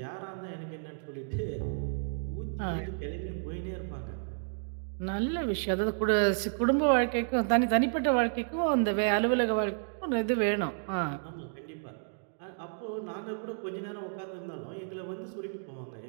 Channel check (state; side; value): silent; left; digital silence